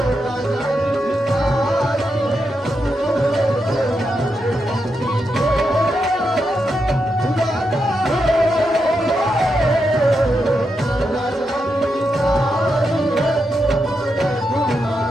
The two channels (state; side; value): normal; both; correlation 0.85